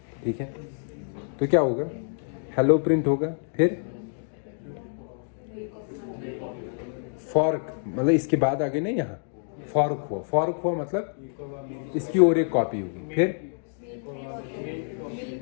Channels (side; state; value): right; silent; 60 dB below the other